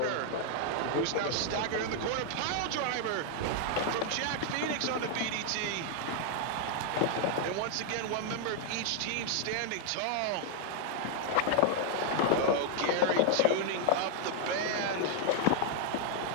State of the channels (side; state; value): both; different; correlation 0.00